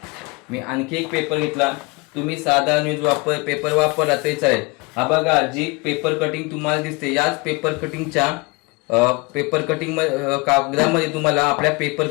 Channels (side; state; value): right; quieter; 27.1 dB